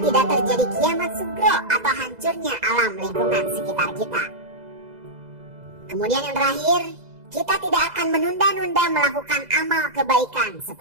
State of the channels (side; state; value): left; late; 2.0 ms